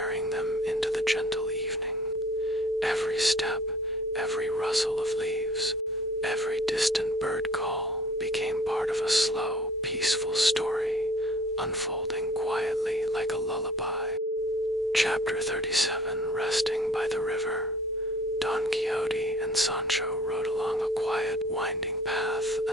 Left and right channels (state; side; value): normal; both; correlation 0.52